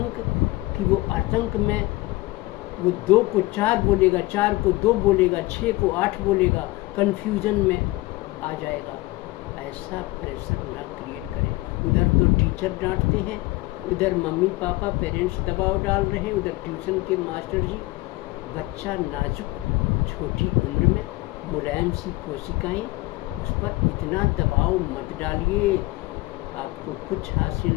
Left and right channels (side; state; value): right; quieter; 20.7 dB